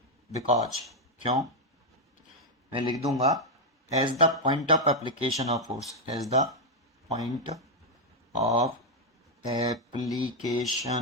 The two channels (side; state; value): both; normal; correlation 0.01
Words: because, क्यों, मैं लिख दूंगा as the point of application of force, as the point of